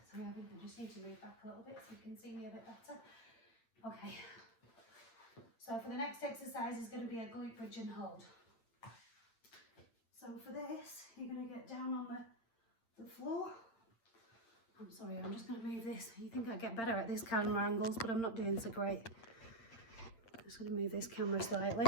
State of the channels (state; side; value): late; right; 8.8 ms